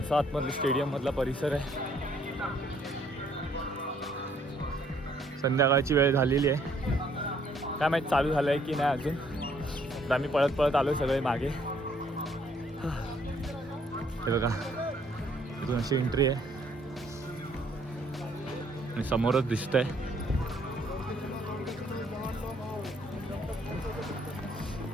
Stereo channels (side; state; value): both; normal; correlation 0.65